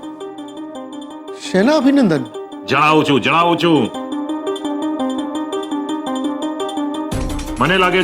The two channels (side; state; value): both; identical; correlation 1.00